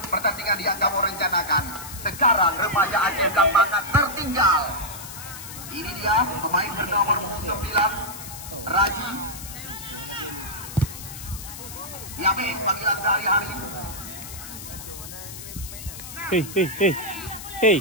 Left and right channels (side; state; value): left; noise; hiss, 12 dB below the sound